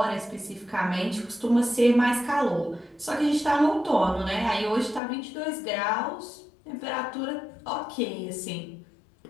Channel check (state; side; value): drops out; right; at 5.0 s